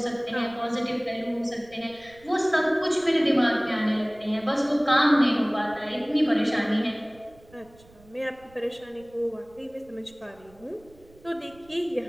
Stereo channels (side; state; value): right; noise; rumble, 26 dB below the sound